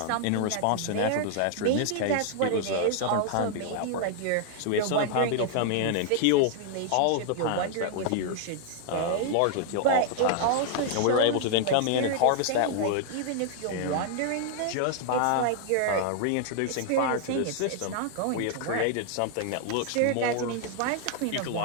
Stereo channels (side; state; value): both; different; correlation 0.00